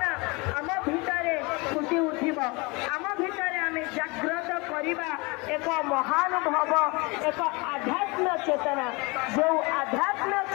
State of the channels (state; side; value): quieter; right; 27.0 dB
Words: आम भितरे फुटी उठिब आम भितरे आमे जागृत करिबा एक महानुभव एक आध्यात्म चेतना जो आध्यात्म